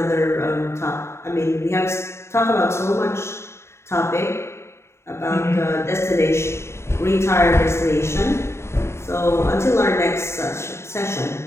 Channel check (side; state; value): right; late; 0.13 ms